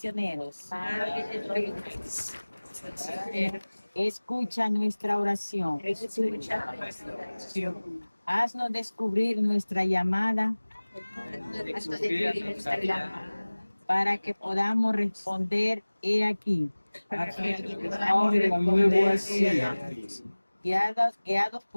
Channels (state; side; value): inverted; both; correlation -1.00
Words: Escucha nuestra oración. Haznos descubrir nuestra llamada Découvrir notre llamada. para que podamos responder he aquí, Me voici. guiados